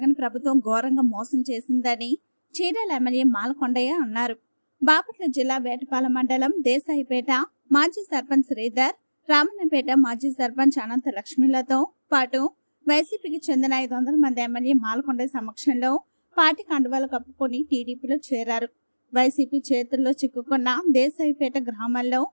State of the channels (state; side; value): inverted; both; correlation -1.00